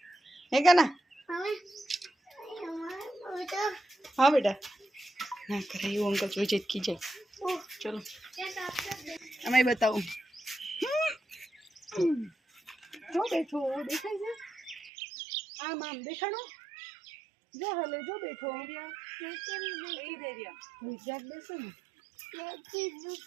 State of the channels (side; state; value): left; drops out; at 14.9 s